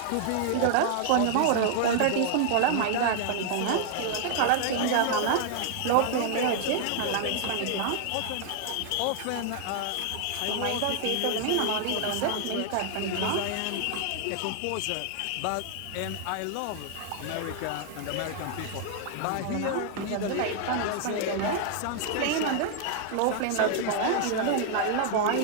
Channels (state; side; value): different; both; correlation 0.00